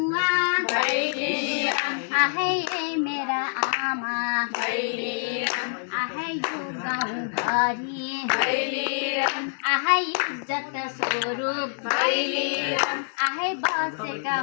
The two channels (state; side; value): silent; right; 61 dB below the other